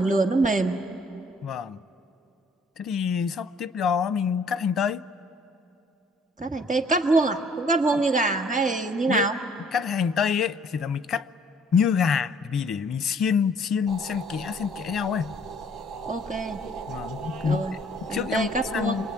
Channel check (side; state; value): both; normal; correlation 0.59